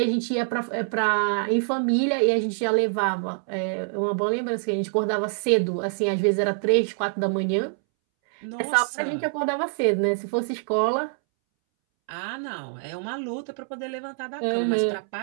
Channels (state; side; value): silent; left; 62 dB below the other